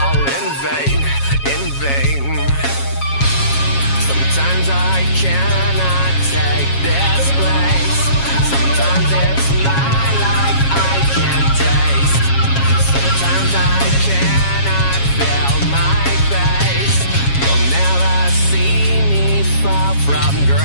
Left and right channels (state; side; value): late; right; 7.3 ms